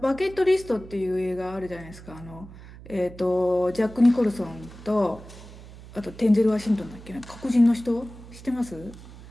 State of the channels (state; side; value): noise; right; hum, 17 dB below the sound